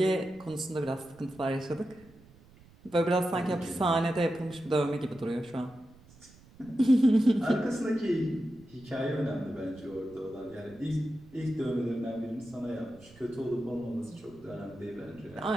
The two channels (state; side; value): noise; right; rumble, 25 dB below the sound